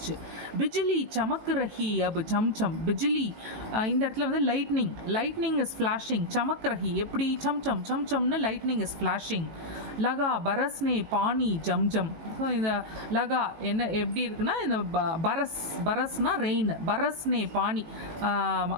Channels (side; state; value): left; late; 18 ms